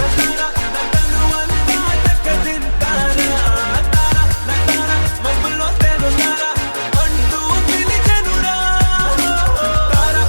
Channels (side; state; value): both; inverted; correlation -1.00